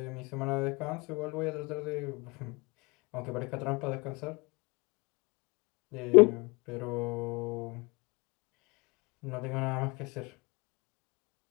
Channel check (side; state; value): right; quieter; 27.2 dB